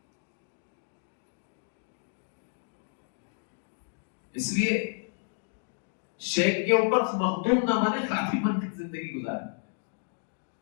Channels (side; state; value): right; silent; 57 dB below the other